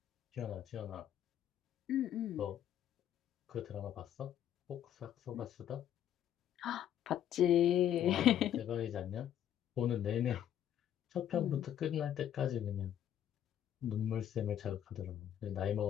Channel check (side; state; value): right; quieter; 10.6 dB